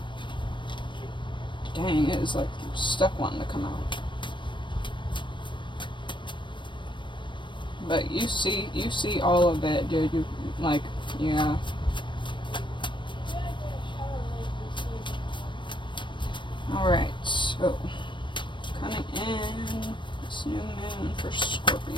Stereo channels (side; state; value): right; late; 0.23 ms